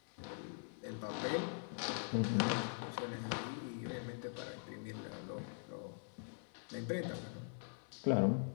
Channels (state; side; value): silent; right; digital silence